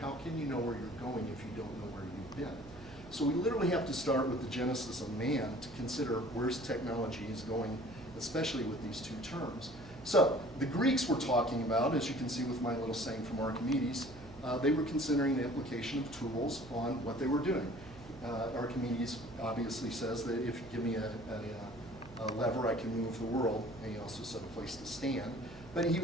where you're going if you don't know where you've been? So we literally have to start with the genesis of man to consider where's technology is going, especially with these two terms. So the Greeks were talking about, as you can see with my little saying from Archimedes, they were considering the application of tools on what they were doing. Archimedes obviously says that if you give me a lever, I can move the world, and he also said a place to stand. But he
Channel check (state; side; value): noise; right; hum, 17 dB below the sound